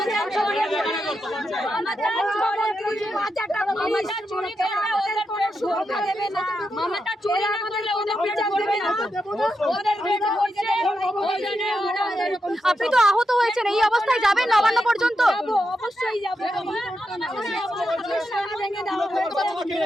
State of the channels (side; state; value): both; normal; correlation 0.86